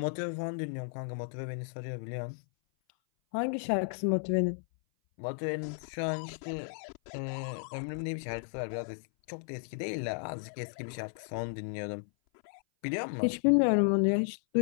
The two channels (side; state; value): right; silent; 55 dB below the other